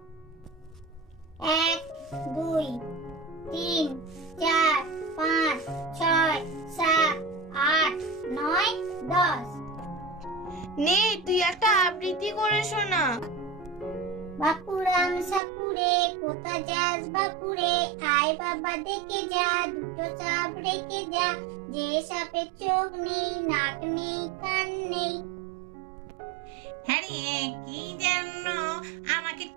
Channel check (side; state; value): left; drops out; at 15.4 s